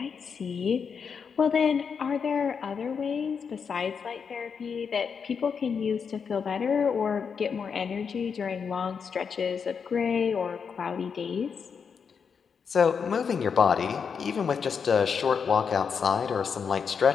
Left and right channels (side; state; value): right; quieter; 6.3 dB